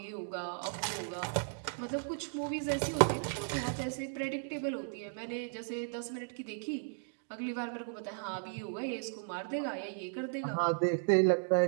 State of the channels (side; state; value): left; silent; digital silence